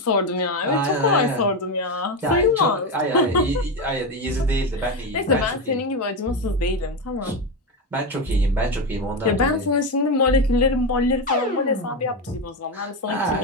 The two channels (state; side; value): normal; both; correlation 0.13